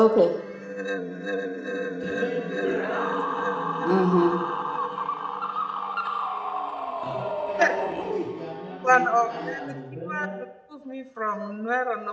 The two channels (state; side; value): identical; both; correlation 1.00